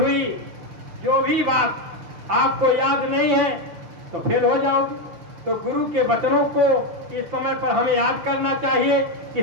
जो भी बात आपको याद नहीं है तो फेल हो जाओगे। तो गुरु के वचनों को इस समय पर हमें याद करना चाहिए कि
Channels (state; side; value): late; left; 5.9 ms